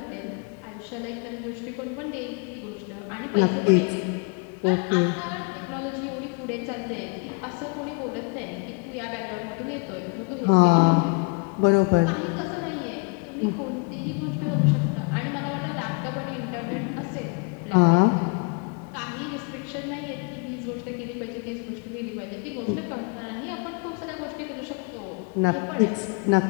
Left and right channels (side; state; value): right; quieter; 31.7 dB